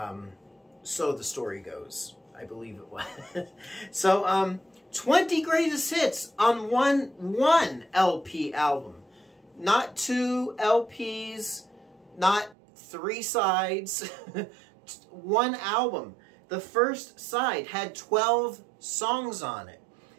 So the story goes. I believe it was. So, 20 greatest hits on one LP album. Not 2 LPs, not 3 sides. One album. The first side had 12 songs on it.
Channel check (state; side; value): drops out; left; at 12.6 s